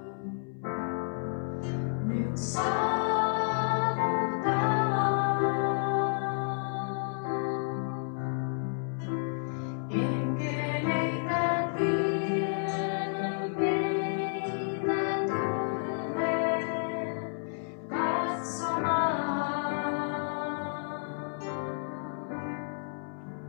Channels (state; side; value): silent; right; 57 dB below the other